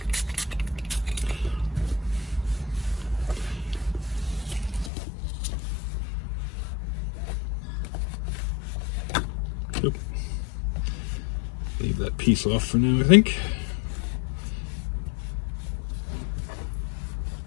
Leave that piece off for now, I think.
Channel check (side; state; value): right; drops out; at 4.9 s